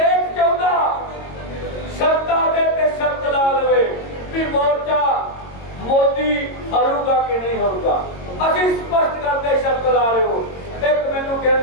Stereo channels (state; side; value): late; right; 22 ms